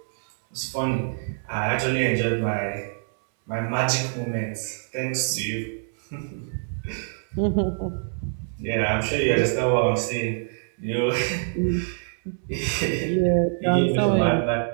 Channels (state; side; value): silent; left; 60 dB below the other